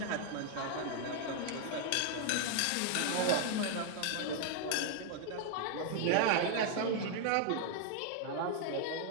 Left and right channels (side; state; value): both; different; correlation 0.00